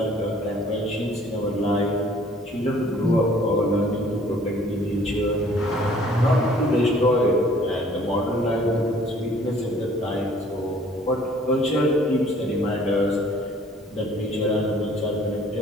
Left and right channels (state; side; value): normal; both; correlation 0.56